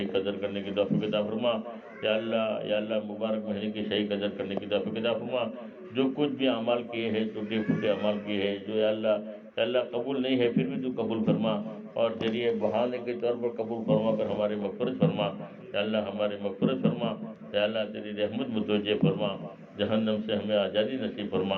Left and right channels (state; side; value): identical; both; correlation 1.00